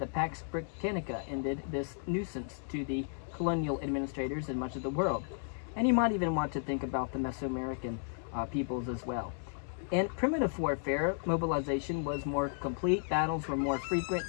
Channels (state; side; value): silent; right; digital silence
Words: Pax Britannica ended this nuisance to the colonial administrators in much of the world. And you might even want to think about the Mesoamerican peoples as well. In primitive warfare, mobilization was more complete, battles were more frequent,